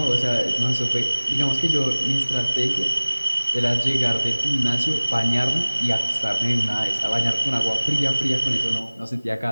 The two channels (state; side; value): inverted; both; correlation -0.99